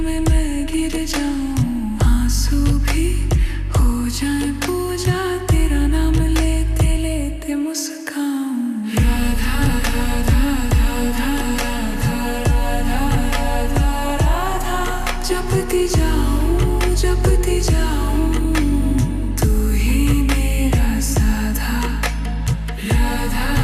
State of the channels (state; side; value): identical; both; correlation 1.00